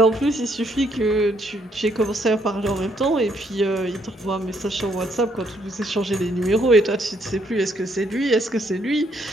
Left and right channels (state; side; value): normal; both; correlation 0.71